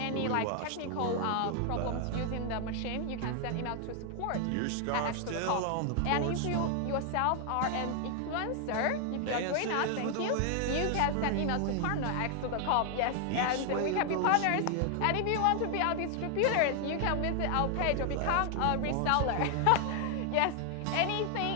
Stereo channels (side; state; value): both; different; correlation 0.00